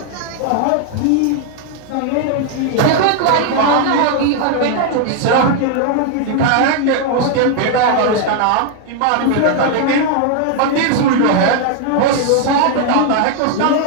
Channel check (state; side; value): different; both; correlation 0.00